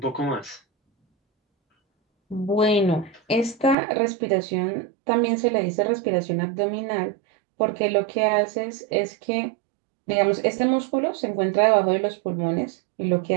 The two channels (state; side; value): drops out; left; at 3.8 s